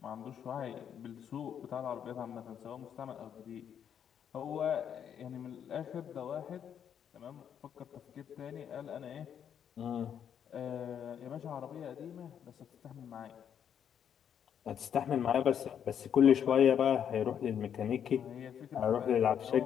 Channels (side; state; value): right; quieter; 8.7 dB